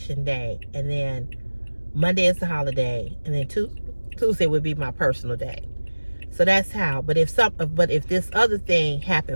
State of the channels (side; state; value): both; inverted; correlation -1.00